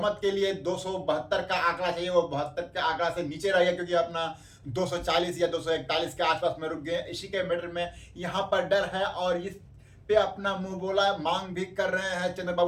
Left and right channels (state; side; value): identical; both; correlation 1.00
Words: के लिए 272 का आंकड़ा चाहिए, वो 72 के आंकड़ा से नीचे रह गया, क्योंकि अपना 240 या 241 के आसपास में रुक गए। इसी के मैटर में यहाँ पर डर है और इस पे अपना मुंह बोला मांग भी कर रहे हैं